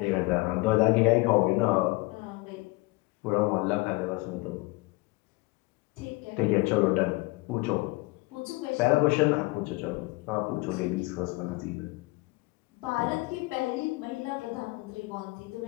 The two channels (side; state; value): right; quieter; 23.8 dB